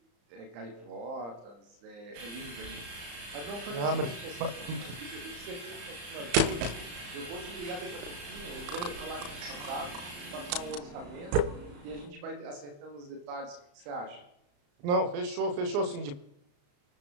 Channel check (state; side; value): late; left; 34 ms